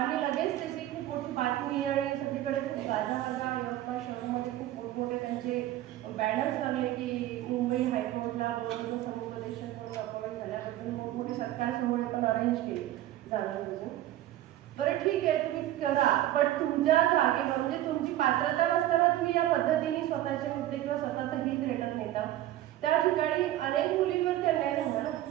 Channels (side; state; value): left; quieter; 14.0 dB